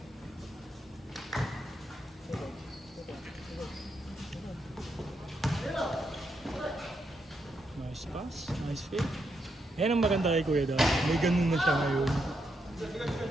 Nice pass, nice fake. Yan ang maganda kay Kuya daw. May ganun na siya ngayon.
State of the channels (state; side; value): normal; both; correlation 0.81